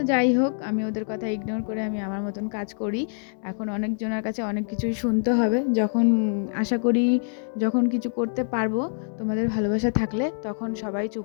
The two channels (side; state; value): right; silent; digital silence